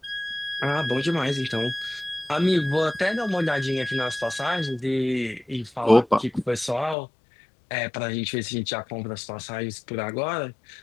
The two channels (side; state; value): right; drops out; at 7.0 s